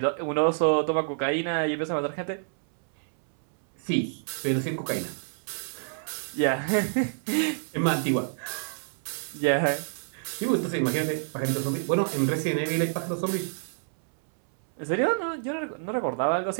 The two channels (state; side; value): silent; left; 60 dB below the other